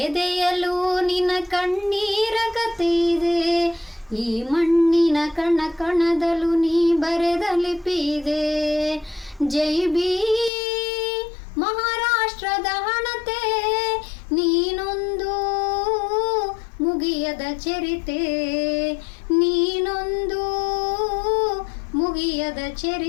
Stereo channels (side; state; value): right; drops out; at 10.5 s